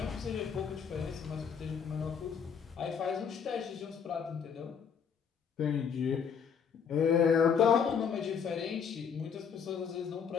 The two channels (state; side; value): quieter; right; 6.9 dB